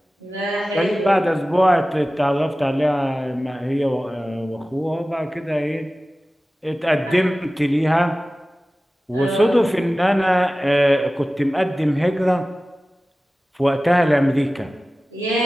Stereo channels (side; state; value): both; normal; correlation 0.96